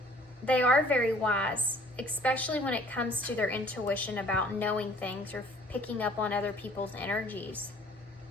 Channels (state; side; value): normal; both; correlation 0.55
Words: they are very wise, especially when it comes to their intuition about knowing things or picking up on other people's energies.